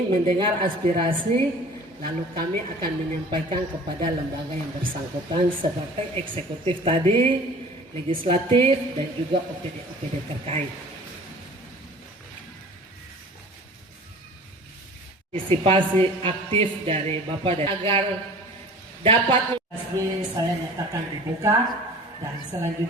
mendengar aspirasi, lalu kami akan menyampaikan kepada lembaga yang bersangkutan seperti eksekutif tadi, legislatif, dan juga OPD-OPD terkait. Partisipasi aktif dari Bapak dan agar dapat resmi saya nyatakan dibuka, dan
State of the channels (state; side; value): normal; both; correlation 0.44